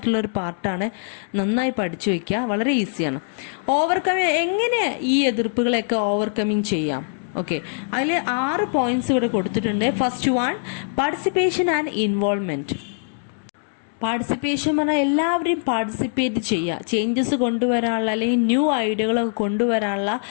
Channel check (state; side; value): silent; right; digital silence